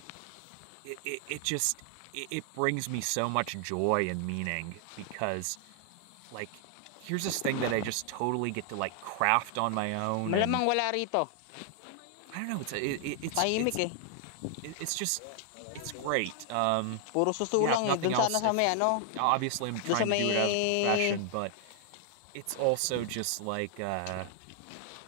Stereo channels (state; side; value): different; both; correlation 0.00